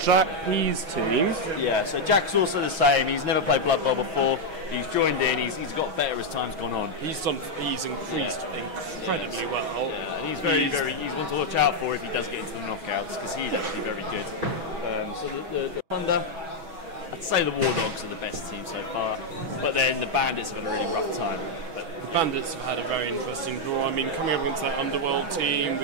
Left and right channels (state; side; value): late; left; 6.2 ms